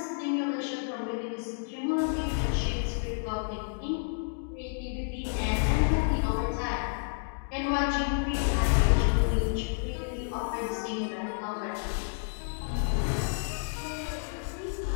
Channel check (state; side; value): silent; right; digital silence